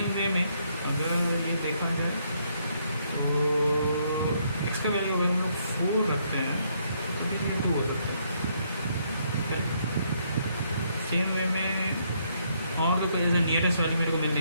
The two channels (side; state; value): both; inverted; correlation -0.71